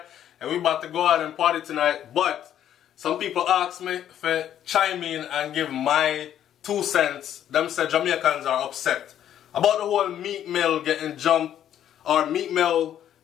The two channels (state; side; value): quieter; right; 10.6 dB